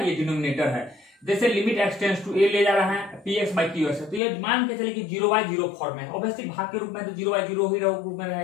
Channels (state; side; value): drops out; right; at 4.2 s